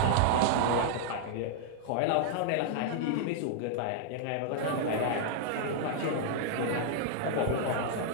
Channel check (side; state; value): both; different; correlation -0.01